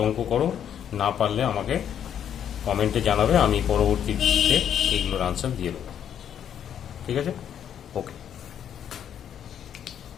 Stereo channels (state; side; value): quieter; right; 9.2 dB